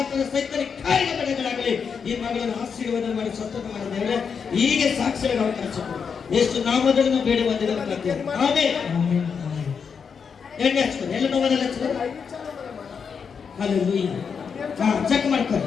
ತರ ಸೈತನಿಕ ಕಾರ್ಯ ಬಿಡುಗಡೆಯಾಗಲಿ. ಈ ಮಗಳನ್ನು ಆಶೀರ್ವಾದ ಮಾಡಿ ಸ್ವತಂತ್ರ ಮಾಡಿ ದೇವರೇ ಹೀಗೆ ಸಾಕ್ಷಿಯಾಗಿ ಅವಕಾಶ ಕೊಡು. ಎಷ್ಟು ನಾಮದಲ್ಲಿ ನಾವು ಬೇಡ ಬಂದಿದ್ದೇವೆ. ಆಮೆನ್. ಎಣ್ಣೆ ಹಚ್ಕೊಂಡು ಎಲ್ಲ ನೋವನ್ನೆಲ್ಲ ಹಚ್ಕೊಂಡು హల్లెలూయా. చెక్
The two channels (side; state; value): right; quieter; 6.3 dB